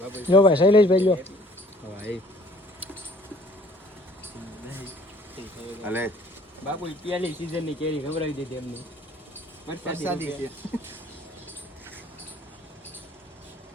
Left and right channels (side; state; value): both; normal; correlation 0.55